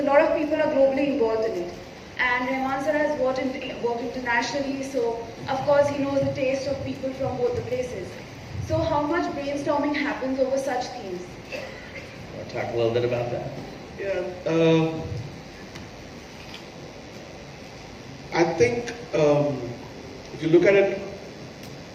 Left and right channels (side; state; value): both; identical; correlation 1.00